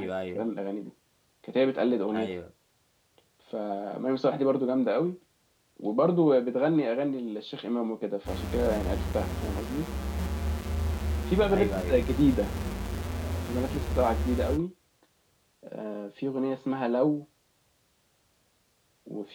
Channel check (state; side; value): identical; both; correlation 1.00